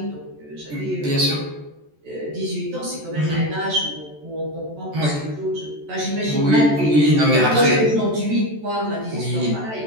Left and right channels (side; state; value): left; late; 14 ms